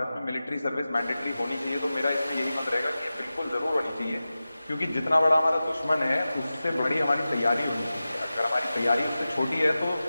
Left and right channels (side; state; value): both; inverted; correlation -0.95